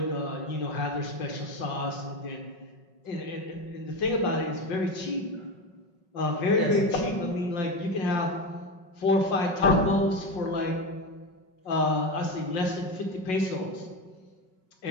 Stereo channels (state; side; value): late; right; 5.4 ms